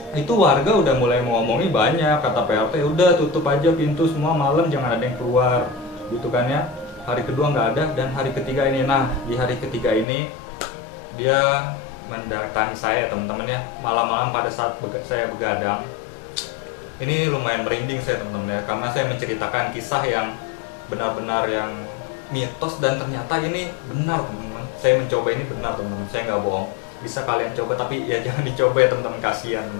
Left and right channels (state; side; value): drops out; right; at 10.1 s